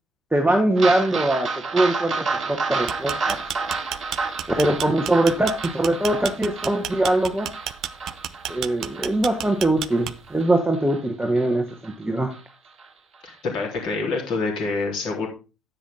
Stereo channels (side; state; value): both; normal; correlation 0.85